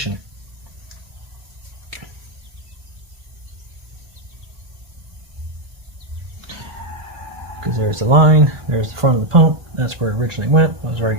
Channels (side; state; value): left; late; 1.4 ms